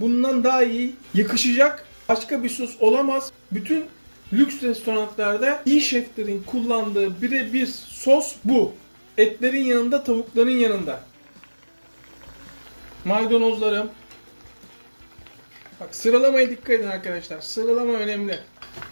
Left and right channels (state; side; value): inverted; both; correlation -1.00